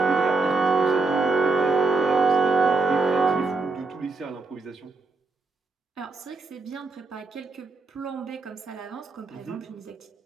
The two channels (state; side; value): quieter; left; 3.8 dB